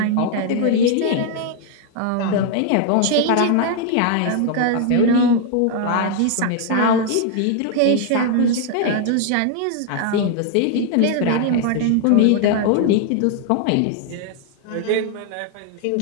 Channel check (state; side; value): different; both; correlation 0.00